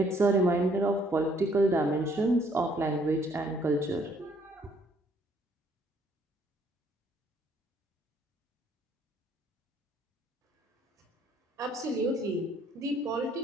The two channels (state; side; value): normal; both; correlation 0.64